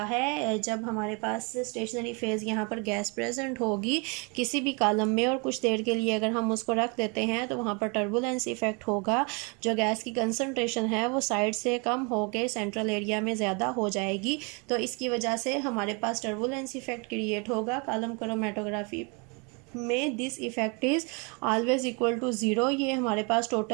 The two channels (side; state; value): left; quieter; 32.3 dB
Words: है, जब हमारे पास स्टेशनरी फेज़ यहाँ पर गैस प्रेजेंट होगी किसी भी कॉलम में और कुछ देर के लिए अगर हम उसको रख देते हैं तो वहाँ पर टर्बुलेंस इफ़ेक्ट होगा। जो गैस की कंसनट्रेशन है वो साइड से कम होकर सेंट्रल एरिया में ज़्यादा हो जाएगी, तो इसकी वजह से हमारे पास टर्बुलेंस इफ़ेक्ट क्रिएट होगा। कॉलम क्रोमेटोग्राफी में this effect is always equal to zero, ये हमारे पास